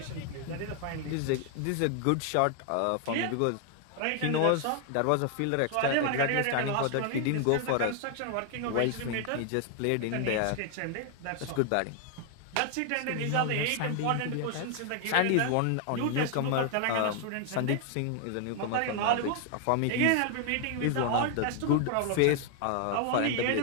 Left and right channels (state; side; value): different; both; correlation 0.00